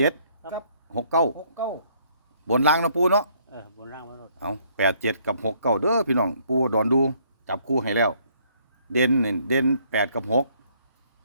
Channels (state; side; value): inverted; both; correlation -0.66